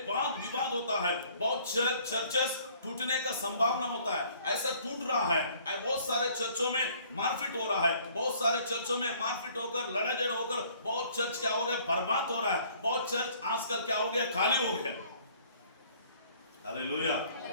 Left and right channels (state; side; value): inverted; both; correlation -0.58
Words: वाद विवाद होता है, बहुत चर्चेस टूटने का संभावना होता है, ऐसा टूट रहा है। बहुत सारे चर्चों में मारपीट हो रहा है, बहुत सारे चर्चों में मारपीट होकर लड़ाई झगड़ा होकर बहुत चर्च क्या हो रहा है, बर्बाद हो रहा है। बहुत चर्च आजकल क्या हो गया, खाली हो गया। हालेलुया।